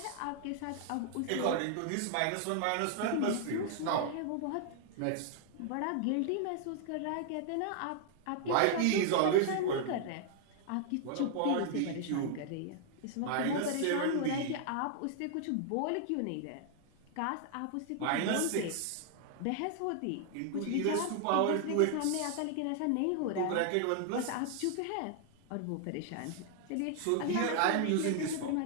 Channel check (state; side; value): different; both; correlation 0.00